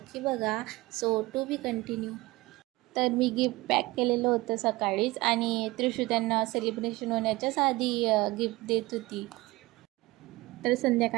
बघा. So to be continue. तर मी गिफ्ट पॅक केलेलं होतं सकाळीच आणि त्रिशू त्यांना सेलिब्रेशन होण्याच्याच आधी गिफ्ट देत होती. तर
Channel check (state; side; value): quieter; left; 20.4 dB